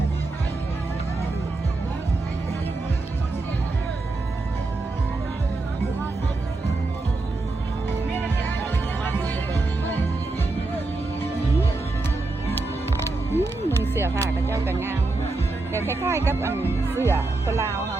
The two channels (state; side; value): quieter; left; 3.3 dB